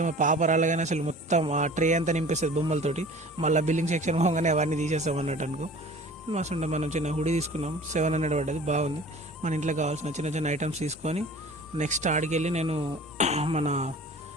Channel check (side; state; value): both; normal; correlation 0.44